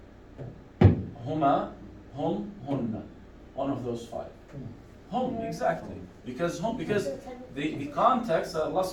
هما, هم, هن. One of those 5. Hum, exactly. Because the context that Allah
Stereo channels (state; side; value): identical; both; correlation 1.00